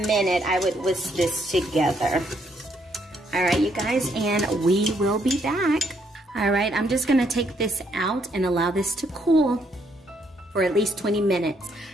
minute, I would whisk this together. All right, you guys, and we will be back. All right, I'm just gonna take this out and allow this to cool for at least 20 minutes.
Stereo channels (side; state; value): both; normal; correlation 0.72